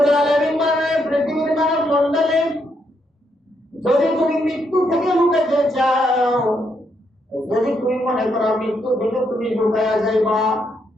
আলামিন মানে পৃথিবীর মানব মণ্ডলে যদি তুমি মৃত্যু থেকে লুকাতে চাও, যদি তুমি মনে করো মৃত্যু থেকে তুমি লুকায়া যাইবা,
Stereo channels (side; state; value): both; normal; correlation 0.77